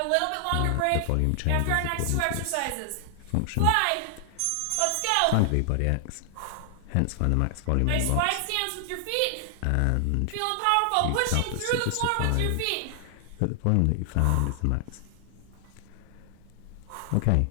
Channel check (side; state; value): both; different; correlation 0.00